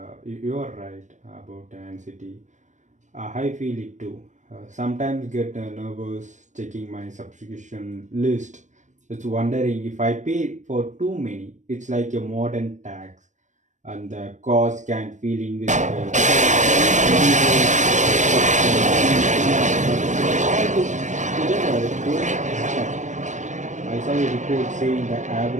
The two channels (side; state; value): left; late; 0.35 ms